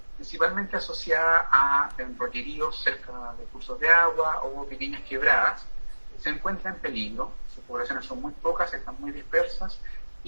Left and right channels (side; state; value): both; inverted; correlation -1.00